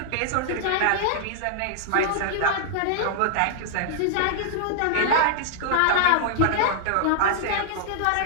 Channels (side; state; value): both; different; correlation -0.01